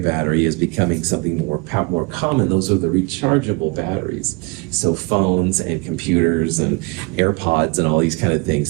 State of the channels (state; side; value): quieter; left; 28.0 dB